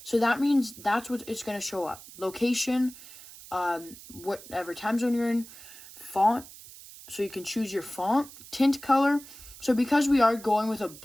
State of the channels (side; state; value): right; noise; hiss, 18 dB below the sound